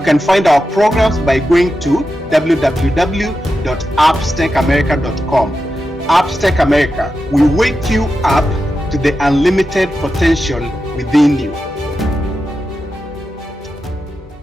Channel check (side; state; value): both; normal; correlation 0.90